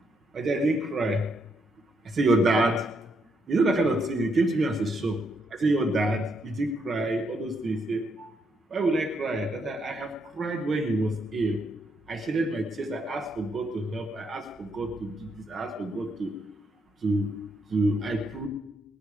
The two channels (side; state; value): both; normal; correlation 0.76